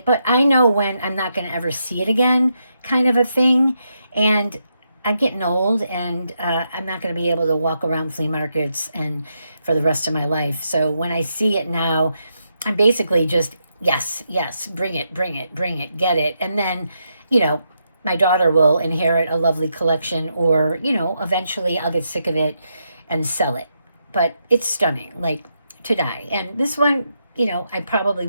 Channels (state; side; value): inverted; both; correlation -0.82